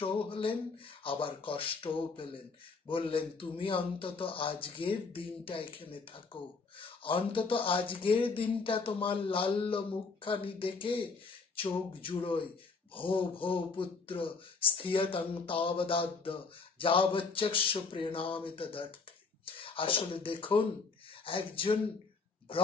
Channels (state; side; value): quieter; right; 4.5 dB